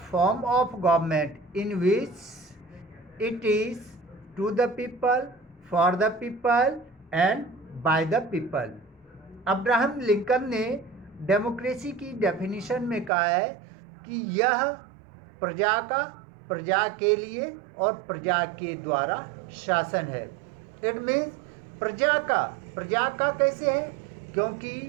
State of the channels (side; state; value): left; drops out; at 13.1 s